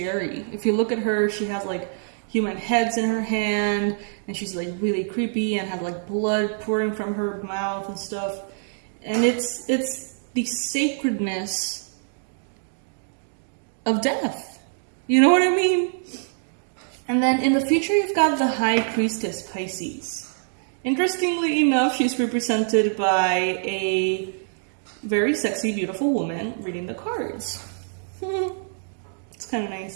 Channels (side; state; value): left; silent; digital silence